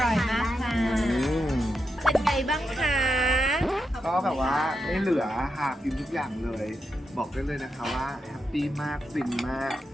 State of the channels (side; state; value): both; normal; correlation 0.86